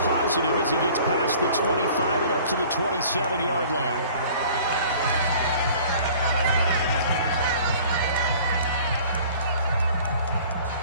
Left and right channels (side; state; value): both; inverted; correlation -0.49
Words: as he gets past the 25 and up to the 27-yard line.